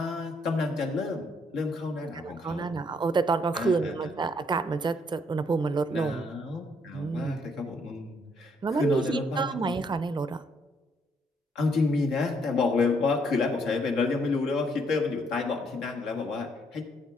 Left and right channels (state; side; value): normal; both; correlation 0.70